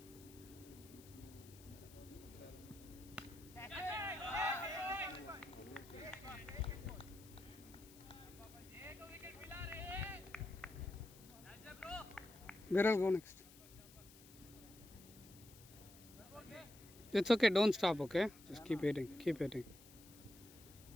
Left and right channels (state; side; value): noise; left; hiss, 20 dB below the sound